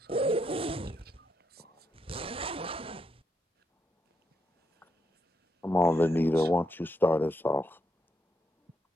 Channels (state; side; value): normal; both; correlation 0.81